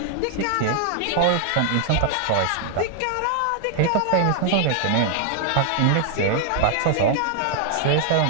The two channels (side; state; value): both; different; correlation 0.00